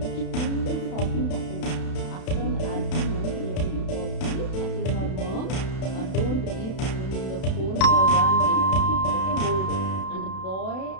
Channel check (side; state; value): right; late; 32 ms